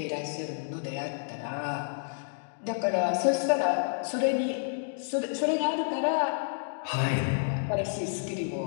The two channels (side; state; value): right; silent; digital silence